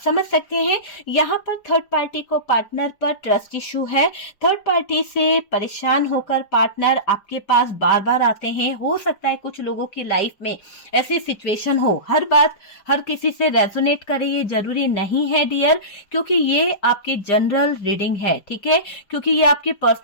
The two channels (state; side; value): late; right; 5.3 ms